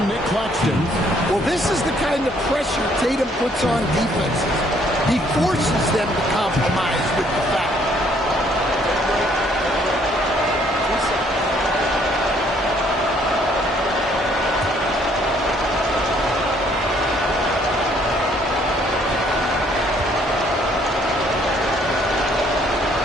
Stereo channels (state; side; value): normal; both; correlation 0.64